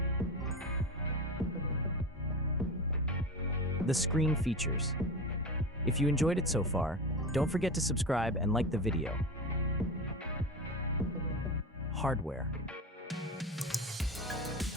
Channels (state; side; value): normal; both; correlation 0.26